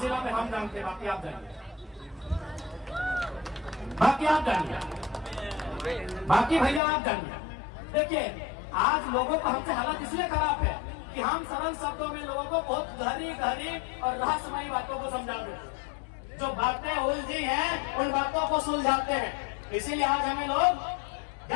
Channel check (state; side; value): drops out; right; at 6.8 s